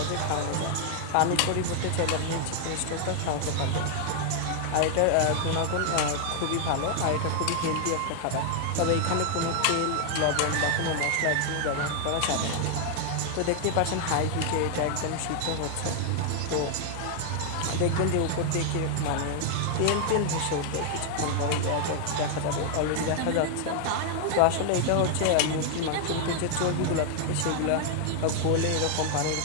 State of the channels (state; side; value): different; both; correlation 0.00